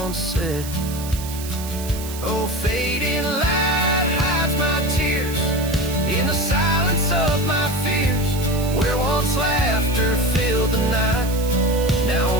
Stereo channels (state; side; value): noise; right; hiss, 12 dB below the sound